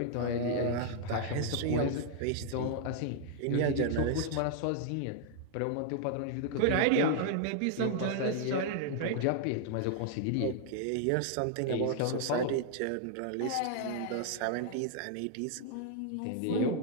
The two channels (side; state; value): both; different; correlation 0.00